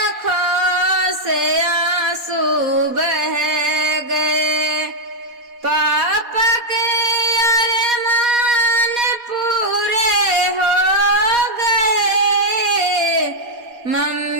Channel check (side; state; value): left; late; 4.2 ms